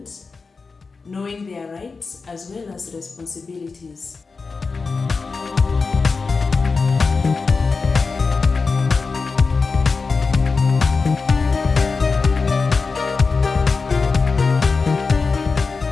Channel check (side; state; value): right; quieter; 4.5 dB